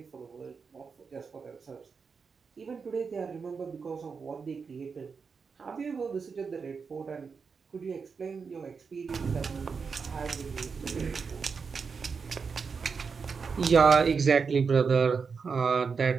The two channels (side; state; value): left; quieter; 5.4 dB